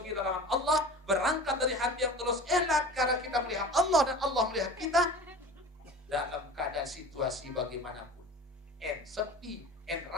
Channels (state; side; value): normal; both; correlation 0.38